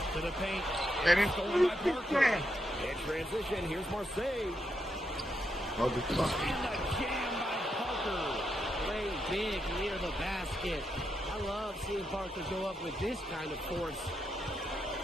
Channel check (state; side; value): normal; both; correlation 0.82